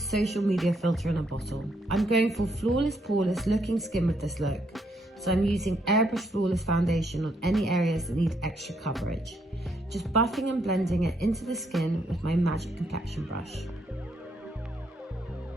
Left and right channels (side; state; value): both; normal; correlation 0.74